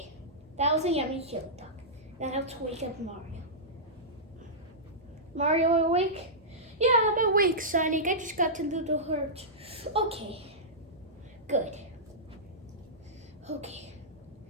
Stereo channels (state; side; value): normal; both; correlation -0.15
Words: that was a yummy chili dog. Now let's wake up Mario. Mario awake? Yeah, I'm awake, Sonic. I just got to do the hurt. Okay, good. Okay,